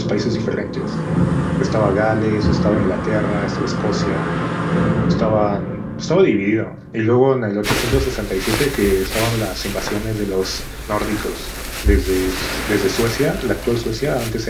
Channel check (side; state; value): both; identical; correlation 1.00